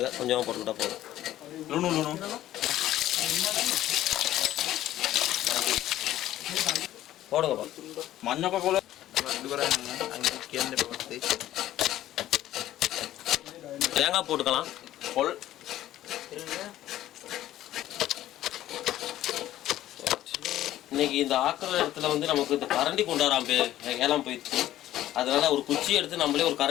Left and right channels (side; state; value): right; quieter; 13.6 dB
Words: கொஞ்சமாக போட்டுக்கிட்டா போதும். ලුණු ලුණු. போடுங்கப்பா. මඤ්ඤොක කොළ අඩු කරන්න අංකල් කියන්න එපා. தேங்காய் போட்டுக்கலாம். පොල් இன்னைக்கு இந்த ஆக்கிற இடத்துல வந்து நமக்கு இந்த கரண்டி கொண்டாடாம ஏலாம் போயிடுச்சு. அதனால ஒரு குச்சி எடுத்து நம்மளே ஒரு